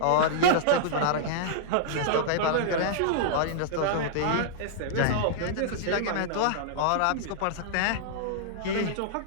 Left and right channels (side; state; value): both; different; correlation -0.02